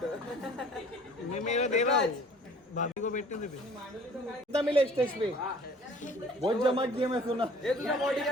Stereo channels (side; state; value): both; normal; correlation 0.51